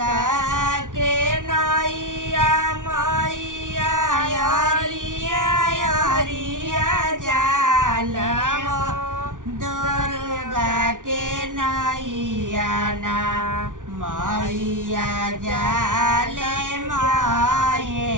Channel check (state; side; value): late; left; 0.88 ms